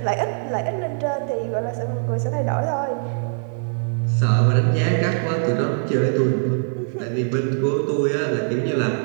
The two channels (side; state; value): left; silent; 61 dB below the other